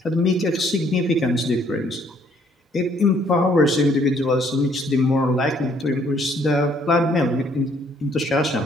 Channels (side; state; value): both; normal; correlation 0.64